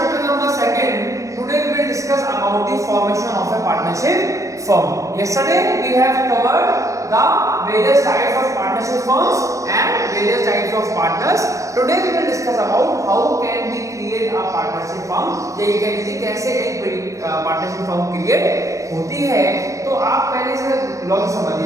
number 2, today we will discuss about the formation of a partnership firm. Yesterday we have covered the various types of partnership firms and various types of partners. Today we will discuss about how can we create a partnership firm. ये कह लीजिए कैसे एक partnership firm create होती है. तो आप पहले से लॉजिक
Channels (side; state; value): left; late; 0.15 ms